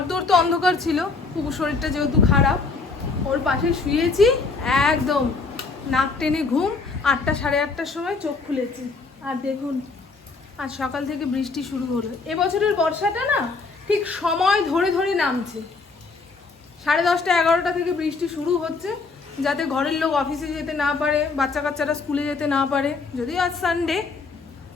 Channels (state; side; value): quieter; right; 4.2 dB